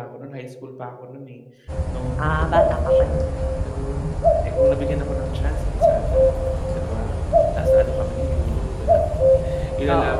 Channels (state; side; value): identical; both; correlation 1.00